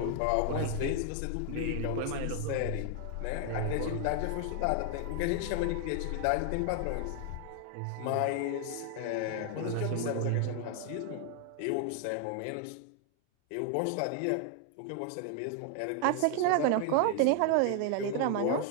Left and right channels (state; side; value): different; both; correlation 0.00